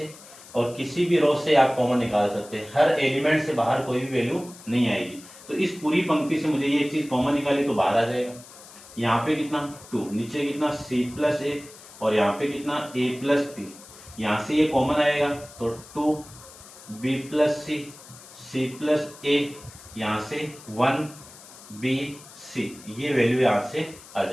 और किसी भी रो से आप कॉमन निकाल सकते हैं, हर एलिमेंट से बाहर कोई भी वैल्यू नहीं आएगी। तो इस पूरी पंक्ति से मुझे ये चीज कॉमन निकाली तो बाहर आ जाएगा। यहाँ पे कितना 2, नीचे कितना c प्लस a और यहाँ पे कितना a प्लस बी, यहाँ से ये कॉमन आएगा तो 2b plus C, c plus a, यहाँ से 1 B C, ये वैल्यू यहां से आ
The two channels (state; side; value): noise; left; hiss, 19 dB below the sound